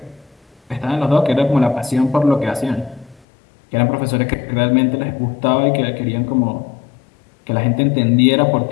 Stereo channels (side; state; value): right; drops out; at 3.2 s